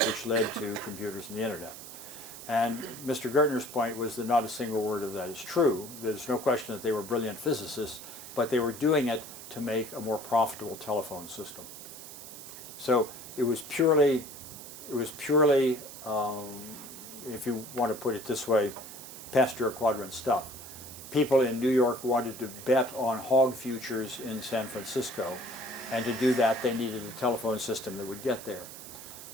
which led to computers and the internet. And Mr. Gertner's point was that not a single word of that is true. There's no question that they were brilliant physicists, but they were doing it to make a more profitable telephone system. So it was purely, if you want to put it this way, Pasteur quadrant stuff. People in New York wanted to bet on hog futures in San Francisco, and to do that they needed a telephone system that would get there.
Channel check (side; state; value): right; noise; hiss, 13 dB below the sound